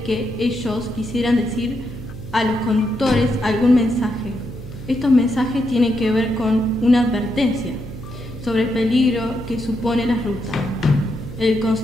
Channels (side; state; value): right; noise; hum, 12 dB below the sound